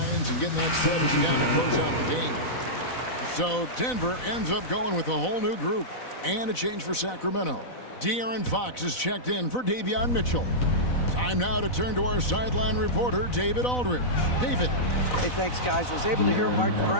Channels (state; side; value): late; right; 4.0 ms